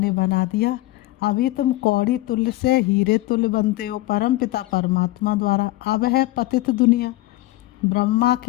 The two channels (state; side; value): quieter; right; 18.1 dB